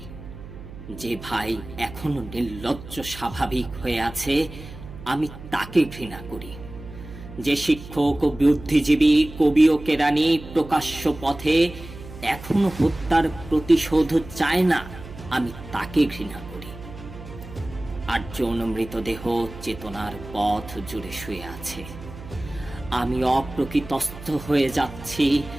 যে ভাই এখনো নির্লজ্জ স্বাভাবিক হয়ে আছে, আমি তাকে ঘৃণা করি। যে শিক্ষক ও বুদ্ধিজীবী, কবি ও কেরানি প্রকাশ্য পথে এখনো হত্যার প্রতিশোধ চায় না, আমি তাকে ঘৃণা করি। 8 জন মৃতদেহ চেতনার পথ জুড়ে শুয়ে আছে। আমি অপ্রকৃতস্থ হয়ে যাচ্ছি।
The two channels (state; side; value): noise; right; hum, 14 dB below the sound